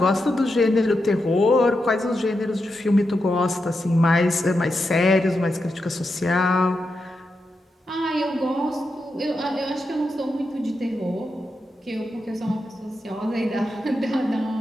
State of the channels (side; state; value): both; normal; correlation 0.87